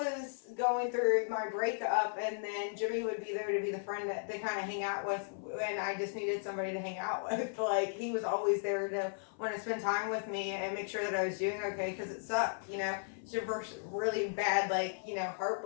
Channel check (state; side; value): silent; right; 54 dB below the other